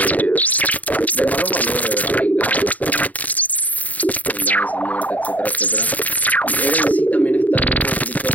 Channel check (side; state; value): right; late; 0.074 ms